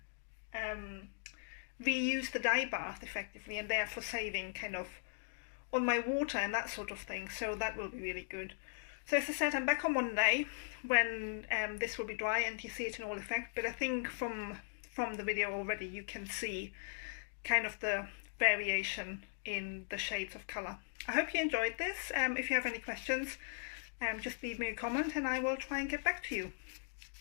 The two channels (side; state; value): right; silent; digital silence